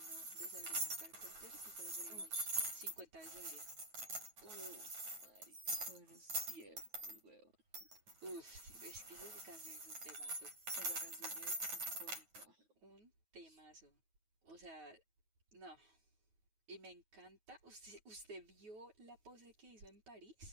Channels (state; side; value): late; left; 9.3 ms